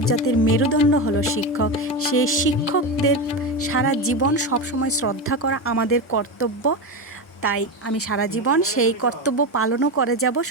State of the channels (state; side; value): normal; both; correlation 0.17